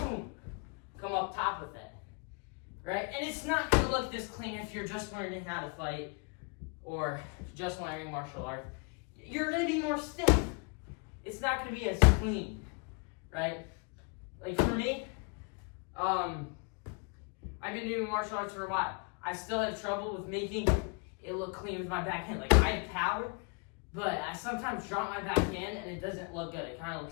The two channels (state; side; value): quieter; right; 35.3 dB